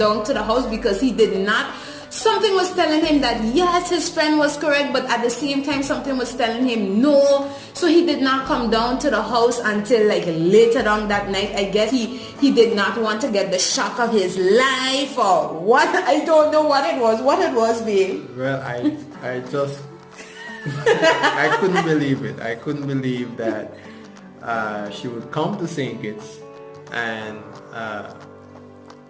to the house because he did not. Something was telling him that yes, his friend was correct, but at the same time something was telling him no. So he did not come down to the house until like later on that night. I guess he did not want to get the shock of his life or what. I don't know what it was, babe. Well, I just I couldn't believe it. I couldn't believe that she would come to St. Kitts and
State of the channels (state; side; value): identical; both; correlation 1.00